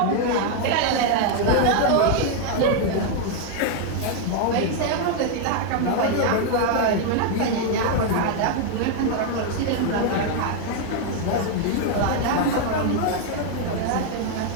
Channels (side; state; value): both; different; correlation 0.00